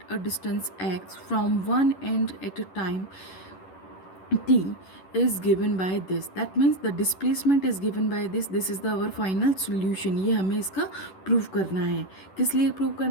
a distance x from one end at a time t is given by this. That means the displacement is given by this. This is the our final solution. ये हमें इसका prove करना है। किस लिए prove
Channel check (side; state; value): right; late; 11 ms